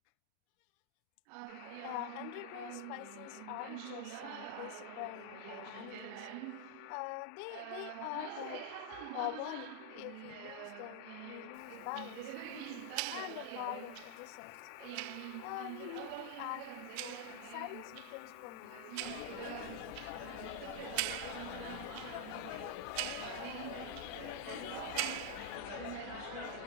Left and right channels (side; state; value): both; different; correlation 0.00